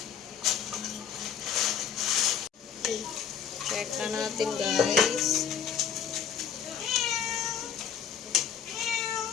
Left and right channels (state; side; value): quieter; right; 8.0 dB